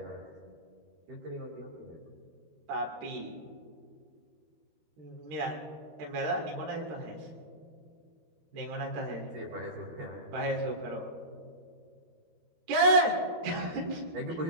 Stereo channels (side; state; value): left; late; 13 ms